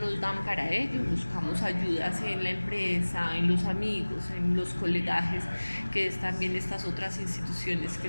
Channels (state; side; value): inverted; both; correlation -1.00